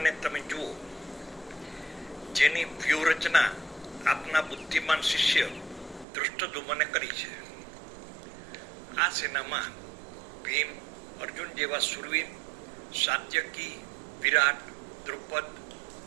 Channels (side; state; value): left; drops out; at 6.1 s